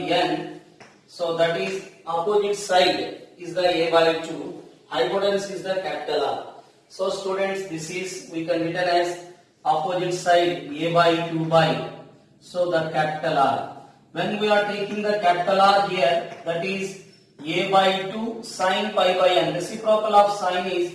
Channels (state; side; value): identical; both; correlation 1.00